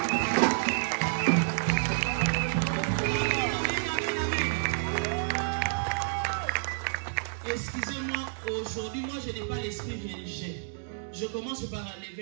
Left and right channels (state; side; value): silent; left; digital silence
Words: Excusez-moi. Sincèrement, aujourd'hui, moi, je n'ai pas l'esprit religieux. Je commence par